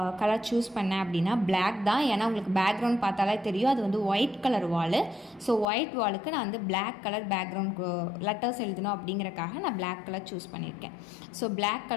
கலர் சூஸ் பண்ணேன் அப்படின்னா பிளாக் தான். ஏன்னா உங்களுக்கு பேக்ரவுண்ட் பார்த்தாலே தெரியும், அது ஒயிட் கலர் வாலு. ஸோ ஒயிட் வாலுக்கு நான் பிளாக் கலர் பேக்ரவுண்ட் லெட்டர்ஸ் எழுதணும் அப்படிங்கிறக்காக நான் பிளாக் கலர் சூஸ் பண்ணியிருக்கேன். ஸோ பிளாக்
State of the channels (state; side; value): drops out; right; at 5.7 s